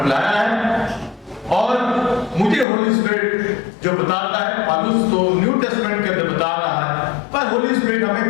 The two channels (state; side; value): drops out; right; at 2.7 s